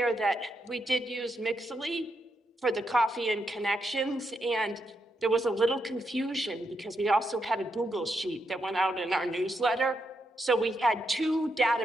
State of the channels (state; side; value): normal; both; correlation 0.82